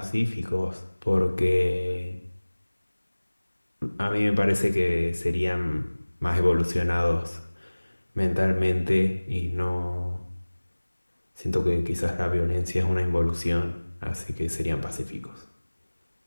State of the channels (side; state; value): both; inverted; correlation -1.00